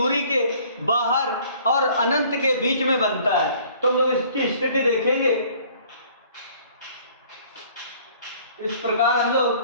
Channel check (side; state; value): both; inverted; correlation -0.55